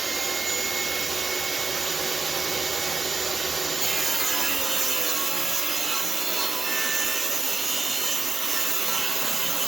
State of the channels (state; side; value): quieter; left; 4.2 dB